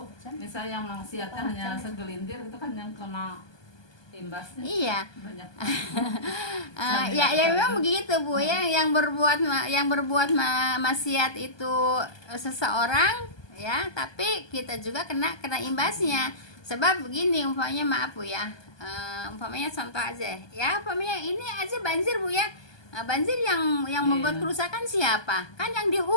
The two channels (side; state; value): right; late; 1.2 ms